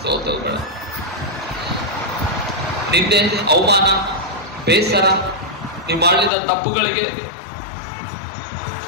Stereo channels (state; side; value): drops out; right; at 6.3 s